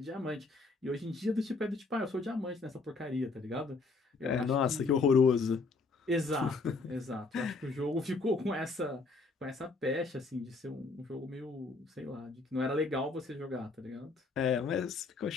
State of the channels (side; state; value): right; quieter; 3.8 dB